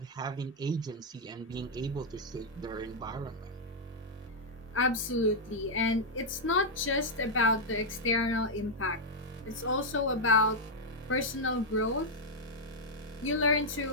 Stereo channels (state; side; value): normal; both; correlation -0.04